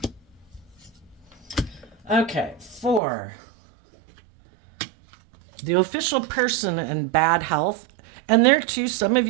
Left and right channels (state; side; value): drops out; left; at 3.0 s